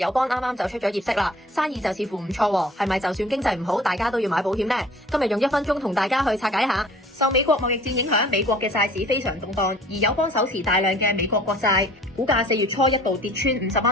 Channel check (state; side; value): normal; both; correlation 0.50